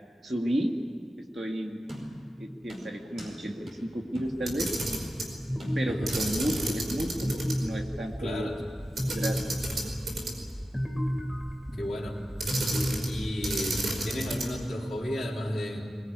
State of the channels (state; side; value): normal; both; correlation 0.93